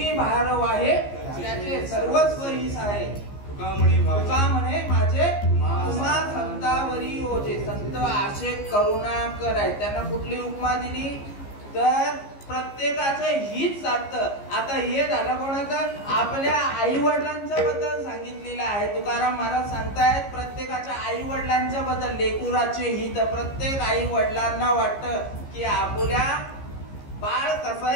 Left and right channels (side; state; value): right; late; 15 ms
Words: भार वाहे त्याचे सर्वस्व हिस आहे. तुका म्हणे माझे तुम्हा संतावरी ओझे. संत आशे करुणा कराय. त्यांना कुठली उपमा दिली तर प्रत्येकाचं हित साधतं. आता हे झालं कोणाचं, आपल्या आई वडिलांच्या बद्दल सांगितलेलं आहे. तुकाराम महाराज सांगतायत प्रत्येकाच्या आई वडिलांच्या बद्दल लेकुराचे हित. प्रत्येक आई वडिलांना वाटतं की आपल्या बाळ